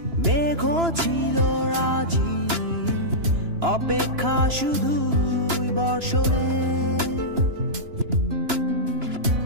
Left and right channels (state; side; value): late; left; 2.9 ms